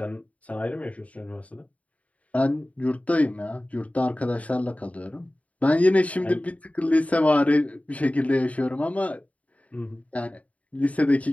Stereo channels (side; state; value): right; late; 0.068 ms